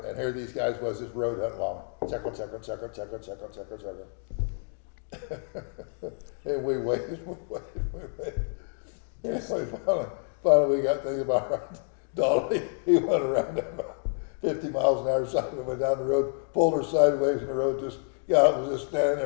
and here these guys was just road hunting along. Check. And we waited. And finally we got thinking about right. Donnie, he went around that about 50 miles an hour side and went down the road, pulled her sideways in the road, just got out and was just standing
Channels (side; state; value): right; silent; 59 dB below the other